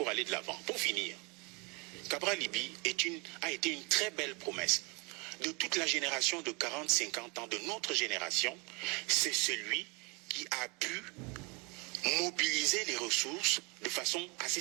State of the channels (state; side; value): quieter; left; 29.6 dB